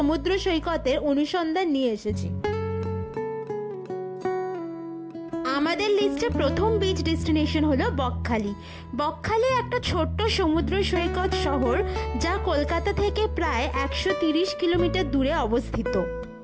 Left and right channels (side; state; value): both; identical; correlation 1.00